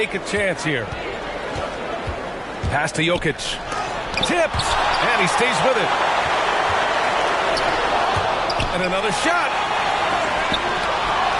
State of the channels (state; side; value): identical; both; correlation 1.00